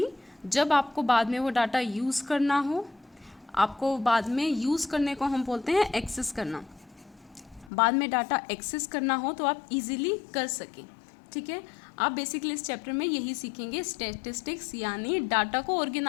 जब आपको बाद में वो डाटा यूज़ करना हो, आपको बाद में यूज़ करने को हम बोलते हैं एक्सेस करना, बाद में डाटा एक्सेस करना हो तो आप इजीली कर सकें। ठीक है। आप बेसिकली इस चैप्टर में यही सीखेंगे, स्टैटिस्टिक्स यानी डाटा को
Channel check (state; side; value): drops out; right; at 7.7 s